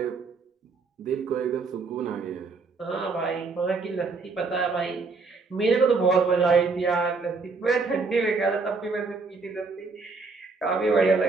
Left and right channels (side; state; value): left; quieter; 4.2 dB